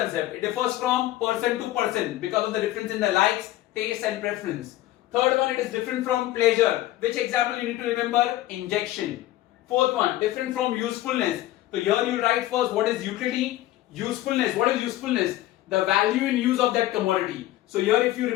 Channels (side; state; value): right; quieter; 15.3 dB